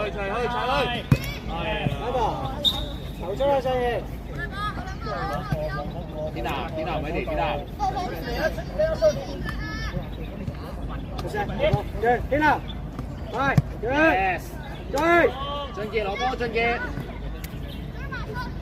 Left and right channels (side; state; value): both; identical; correlation 1.00